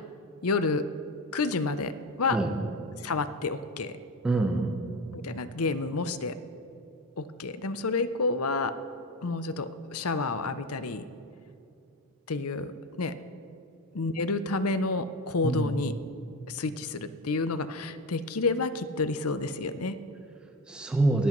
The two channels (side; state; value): both; normal; correlation 0.24